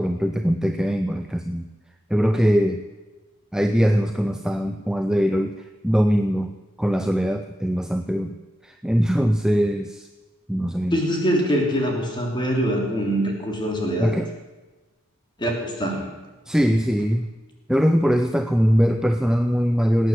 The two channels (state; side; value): normal; both; correlation 0.90